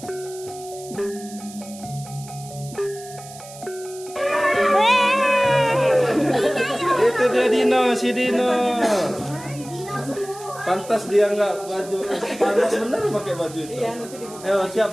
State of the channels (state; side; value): noise; right; hiss, 17 dB below the sound